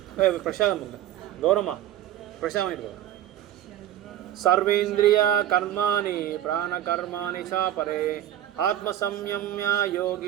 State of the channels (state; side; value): quieter; left; 12.3 dB